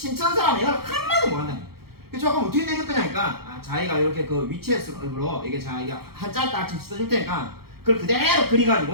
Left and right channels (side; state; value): left; late; 0.95 ms